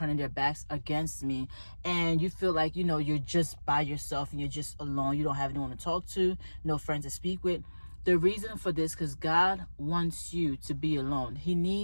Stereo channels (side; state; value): both; inverted; correlation -1.00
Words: their backs against me? And you feel like, you're just by yourself and you're just alone. You don't have anyone to talk to, no friends to speak with. The reason for this, because God wants you to be alone. He